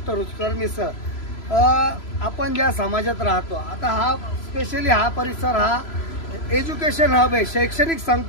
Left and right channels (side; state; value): right; late; 3.0 ms